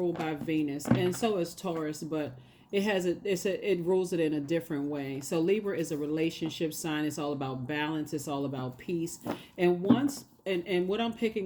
by Venus, and so is Taurus, but it rules it in a different way. So Libra is a relationship sign. It's all about balance. It's all about peace. And what I'm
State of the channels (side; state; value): both; identical; correlation 1.00